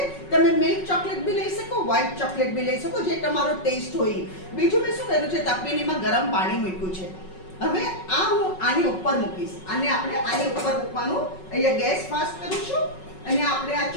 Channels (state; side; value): late; right; 5.4 ms